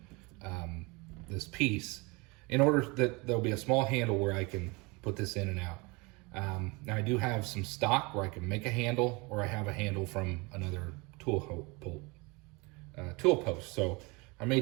this piece, in order that there'll be a small handle where I can put this in and out. Now I do have some stock where I can make a handle, or I have a handle from another tool post. So I may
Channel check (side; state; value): left; quieter; 26.9 dB